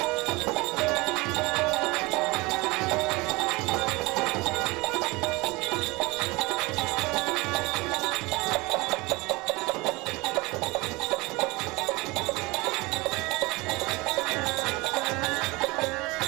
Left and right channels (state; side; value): quieter; left; 23.7 dB